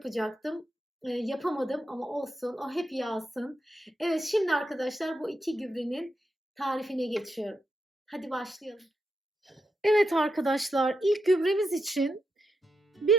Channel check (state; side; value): normal; both; correlation 0.84